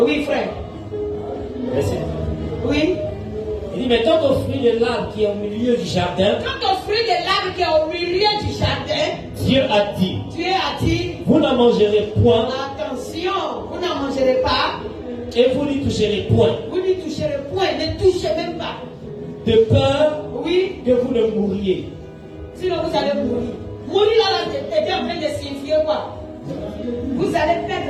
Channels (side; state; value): both; identical; correlation 1.00